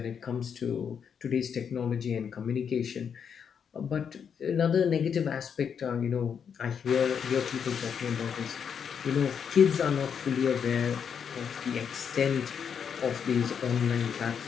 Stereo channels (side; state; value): right; quieter; 7.3 dB